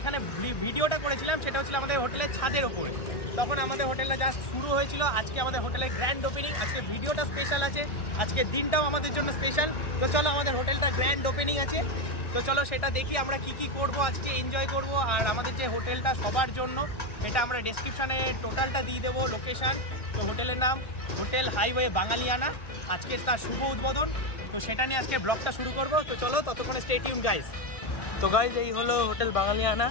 ভিডিওটা করেছিলাম সেটা হচ্ছিল আমাদের হোটেলের ছাদের ওপরে। তখন আমাদের হোটেলটা জাস্ট শুরু হয়েছিল। আজকে আমাদের হোটেলের গ্র্যান্ড ওপেনিং। আজকে ভিডিওটা স্পেশাল আছে, আজকের দিনটাও আমাদের জন্য স্পেশাল। তো চলো আমাদের হোটেলটা গ্র্যান্ড ওপেনিং আছে, তো চলো সেটা দেখি আমরা কি কি করব, আজকে এনজয় করব। আর আমাদের যে হোটেলটা সবার জন্য, এটা আমরা ডেসক্রিপশানে টোটালটা দিয়ে দেবো লোকেশান। তো হোটেলের নাম হোটেল হাইওয়ে বাঙালিয়ানা। আজকে তার শুভ উদ্বোধন, তো সেটা নিয়ে আজকে ব্লগটা শুরু করব। তো চলো ততক্ষণে স্টে টিউন গাইস। তো গাইজ এই হলো হোটেল বাঙালিয়ানা।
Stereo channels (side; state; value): right; late; 1.6 ms